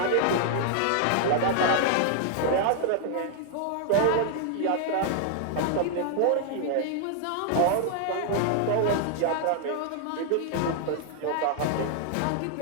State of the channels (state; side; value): different; both; correlation 0.00